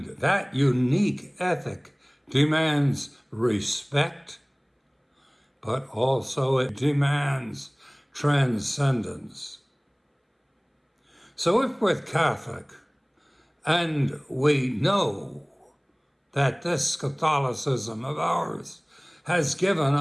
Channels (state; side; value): identical; both; correlation 1.00